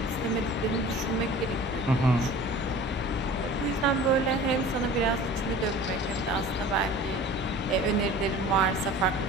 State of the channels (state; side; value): normal; both; correlation 0.42